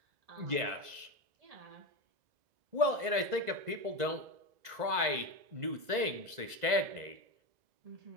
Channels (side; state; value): left; late; 2.0 ms